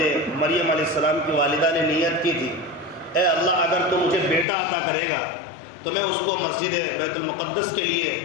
مریم علیہ السلام کی والدہ نے نیت کی تھی، اے اللہ اگر تو مجھے بیٹا عطا کرے گا تو میں اس کو مسجد بیت المقدس کے لیے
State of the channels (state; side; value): drops out; right; at 4.5 s